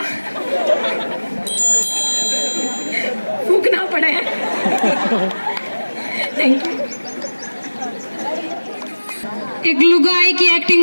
वो थूकना पड़े। Thank you. एक लुगाई की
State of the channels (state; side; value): inverted; both; correlation -1.00